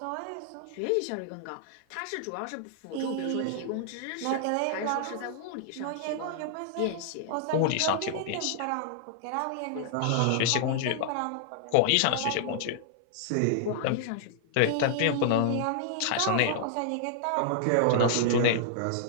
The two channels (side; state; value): both; different; correlation -0.01